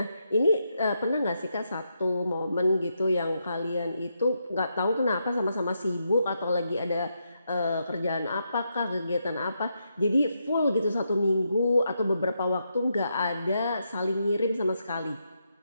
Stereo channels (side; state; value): both; inverted; correlation -0.82